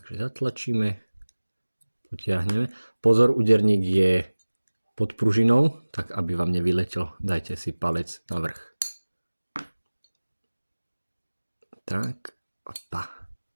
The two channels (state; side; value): inverted; both; correlation -1.00